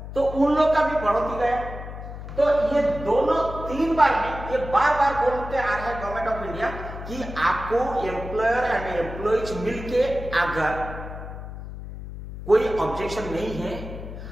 तो उन लोग का भी बढ़ोतरी गया। तो ये दोनों 3 बार में ये बार बार बोलते आ रहा है गवर्नमेंट ऑफ इंडिया कि आपको एम्प्लॉयर एंड एम्प्लॉइज मिलके अगर कोई ऑब्जेक्शन नहीं है,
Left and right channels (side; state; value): left; noise; hum, 10 dB below the sound